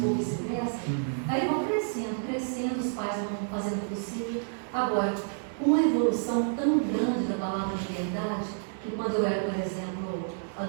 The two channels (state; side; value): silent; left; digital silence